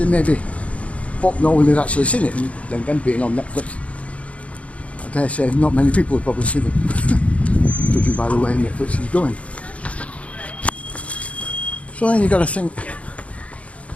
maybe thought no one had actually seen it, and then again being on Netflix, I dare say not many people have probably seen it, judging by the way Netflix is going. So then you've got to think,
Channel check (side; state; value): right; late; 0.064 ms